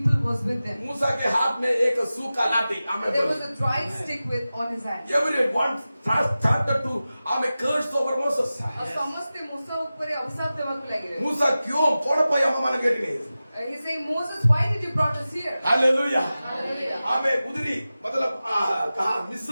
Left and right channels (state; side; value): inverted; both; correlation -0.95